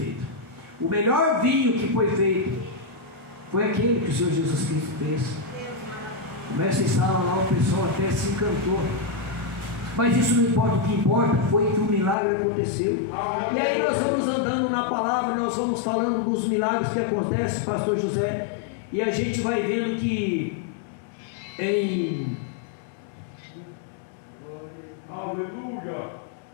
O melhor vinho que foi feito foi aquele que o Senhor Jesus Cristo fez. Começa em sala lá, o pessoal até se encantou. Mas isso não importa, o que importa foi que o milagre aconteceu. E aí nós vamos andando na palavra, nós vamos falando dos milagres que acontecem, pastor José, e a gente vai vendo que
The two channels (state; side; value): drops out; right; at 12.2 s